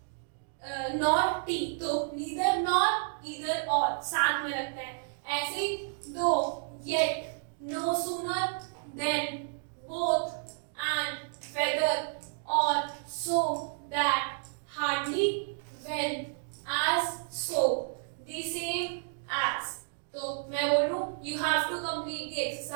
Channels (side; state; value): left; silent; digital silence